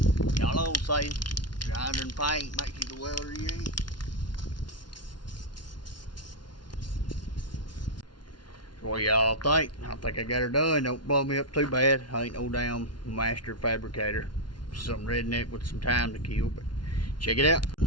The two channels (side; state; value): right; late; 0.71 ms